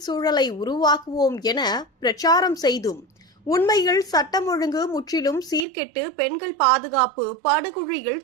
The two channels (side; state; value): left; drops out; at 5.7 s